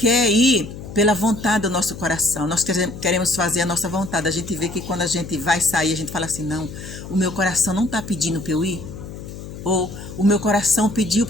ir pela vontade do nosso coração. Nós queremos fazer a nossa vontade. A gente vê que quando a gente vai sair, a gente fala assim, não, o meu coração não está pedindo para eu ir. Ou o meu coração pediu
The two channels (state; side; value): noise; left; hum, 12 dB below the sound